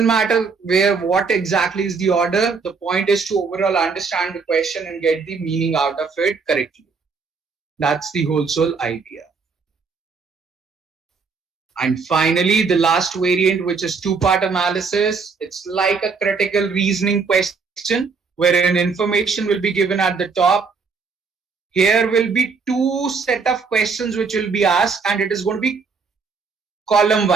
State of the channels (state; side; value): quieter; left; 5.0 dB